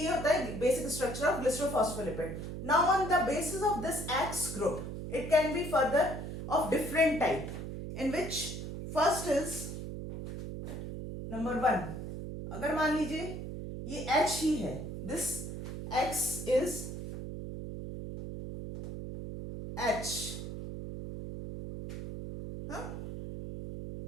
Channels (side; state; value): right; noise; hum, 7 dB below the sound